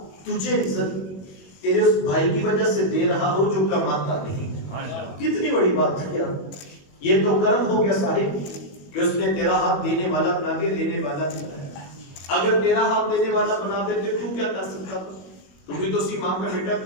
تجھے عزت تیرے اس بھائی کی وجہ سے دے رہا ہو جو کماتا نہیں۔ کتنی بڑی بات ہے یار، یہ تو کرم ہو گیا صاحب کہ اس نے تیرا ہاتھ دینے والا بنا کے لینے والا بنایا۔ اگر تیرا ہاتھ دینے والا بنا دیتے تو کیا کر سکتا تھا؟ تو بھی تو سی ماں کا بیٹا،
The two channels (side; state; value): right; late; 21 ms